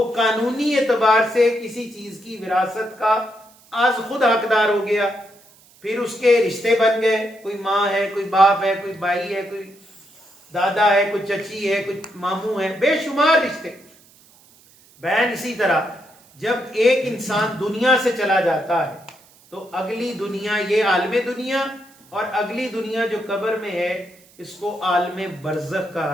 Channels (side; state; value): right; noise; hiss, 28 dB below the sound